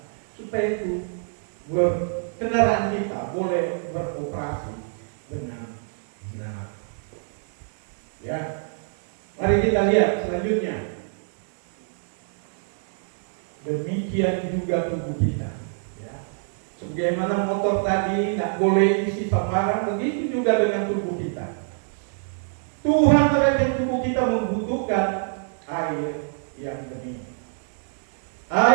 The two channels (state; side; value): silent; left; digital silence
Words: supaya itu kendaraan kita boleh beroperasi dengan benar. Ya, mari kita lihat selanjutnya. Demikian juga tubuh kita, ya. Sebagaimana motor tadi tidak boleh isi sembarang, begitu juga dengan tubuh kita. Tuhan terhadap tubuh kita membutuhkan air yang bening.